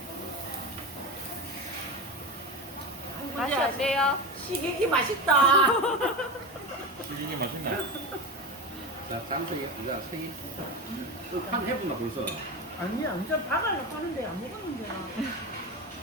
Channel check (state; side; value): normal; both; correlation 0.22